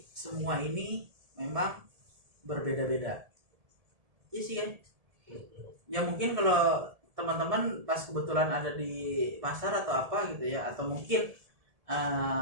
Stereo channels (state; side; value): late; left; 1.7 ms